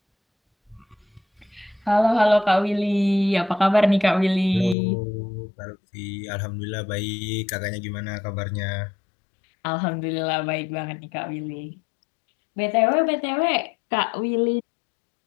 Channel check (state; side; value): drops out; right; at 4.8 s